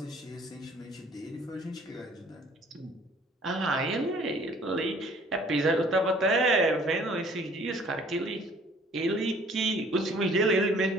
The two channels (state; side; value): normal; both; correlation 0.55